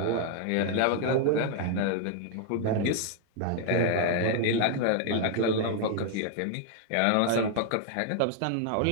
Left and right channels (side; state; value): both; different; correlation 0.00